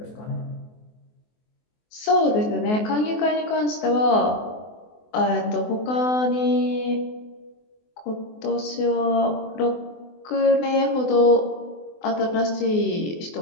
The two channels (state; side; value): late; right; 24 ms